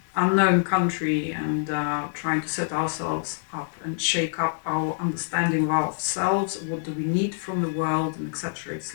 unknown country, and trying to set ourselves up and shake up our understanding of ourselves. What do we need from the world, and etc. It's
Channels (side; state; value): right; silent; 55 dB below the other